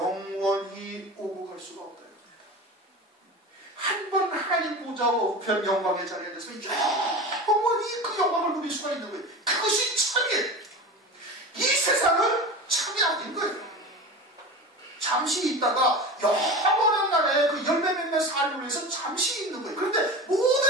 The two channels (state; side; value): normal; both; correlation 0.30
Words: 오고 갈 수가 없다. 한 번 하나님 보좌와 우편 영광의 자리에 대해서 영원히 그 영광을 누릴 수가 있는 거예요. 그것이 참이에요. 이 세상은 참이 아닌 거예요. 잠시 있다가 영원한 나라에 그 열매 맺는 삶을 위해서 잠시 있는 거예요. 그런데